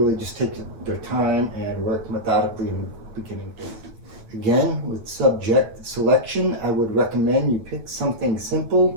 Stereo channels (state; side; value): late; left; 9.3 ms